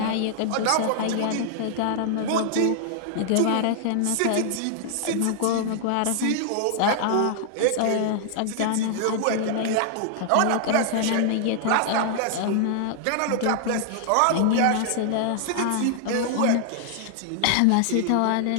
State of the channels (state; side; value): different; both; correlation -0.01